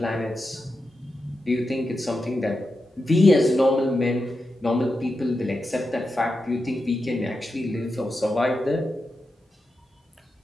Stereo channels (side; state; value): both; normal; correlation 0.89